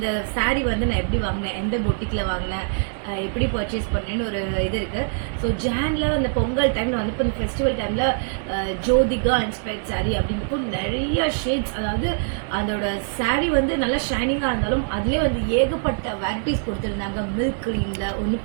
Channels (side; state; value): left; silent; digital silence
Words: சாரீ வந்து நான் எப்படி வாங்கினேன், எந்த பொட்டிக்கில் வாங்கினேன், எப்படி பர்ச்சேஸ் பண்ணேன்னு ஒரு இது இருக்குது. ஸோ ஜானில் அந்த பொங்கல் டைமில் வந்து இப்போ இந்த ஃபெஸ்டிவல் டைமில் ஜோதிகா இன்ஸ்பயர்ட் சாரீ அப்படிங்கிறப்போ நிறைய ஷேட்ஸ், அதாவது அதோட சாரீ வந்து நல்லா ஷைனிங்காக இருந்தாலும் அதிலே வந்து ஏகப்பட்ட வெரைட்டிஸ் கொடுத்துருந்தாங்க. மில்க் க்ரீனில் ஒன்று,